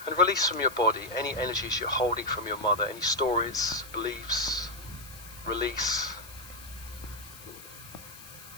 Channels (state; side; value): noise; left; hiss, 17 dB below the sound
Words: And release from your body any energies you're holding from your mother, any stories, beliefs. Release.